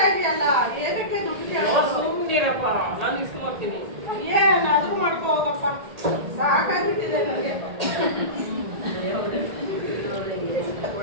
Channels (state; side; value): late; left; 1.8 ms